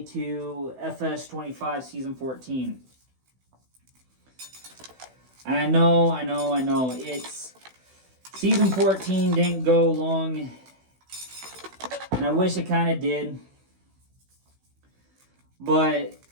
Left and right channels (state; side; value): late; left; 16 ms